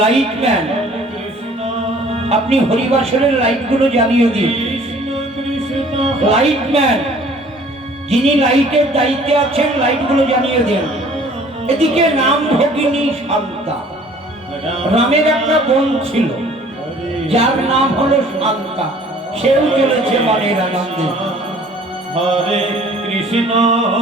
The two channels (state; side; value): normal; both; correlation 0.53